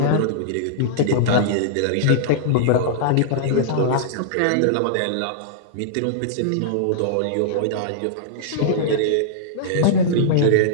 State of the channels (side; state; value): both; different; correlation -0.02